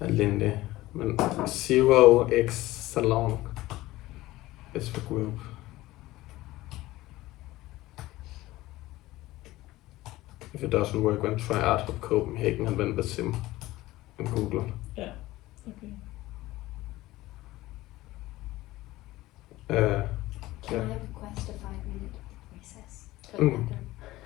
Alindi. 0x Salon is the group. If it doesn't work, then try Art Hub Copenhagen and then Wasim in Google. Yeah. Okay. Can I request a 5-minute recess?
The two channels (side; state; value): right; quieter; 17.6 dB